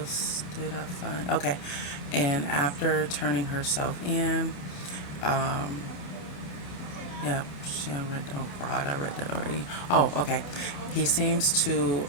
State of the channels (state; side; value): late; right; 27 ms